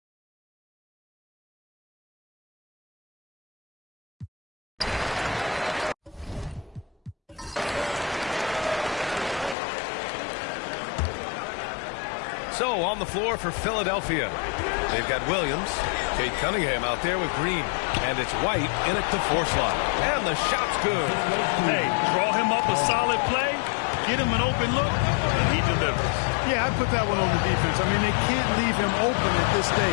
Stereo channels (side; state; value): right; drops out; at 9.6 s